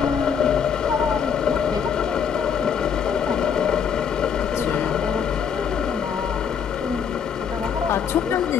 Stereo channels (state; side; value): quieter; right; 7.2 dB